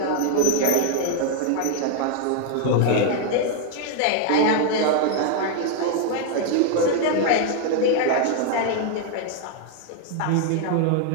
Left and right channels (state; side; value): different; both; correlation 0.00